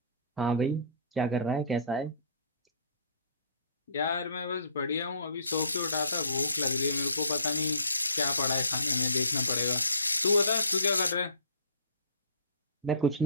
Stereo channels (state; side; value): inverted; both; correlation -0.49